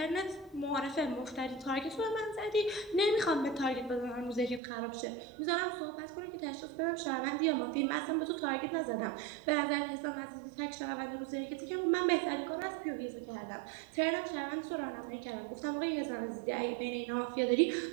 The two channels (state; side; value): drops out; left; at 4.6 s